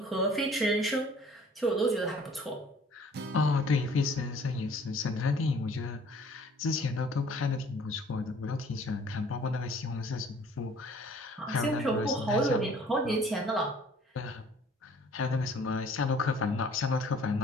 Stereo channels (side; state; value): both; normal; correlation 0.54